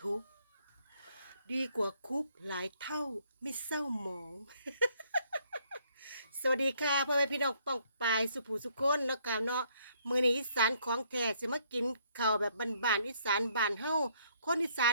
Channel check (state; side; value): inverted; both; correlation -0.68